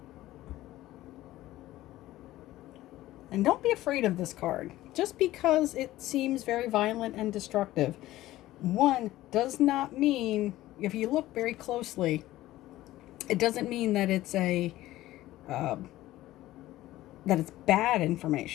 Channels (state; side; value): quieter; right; 15.8 dB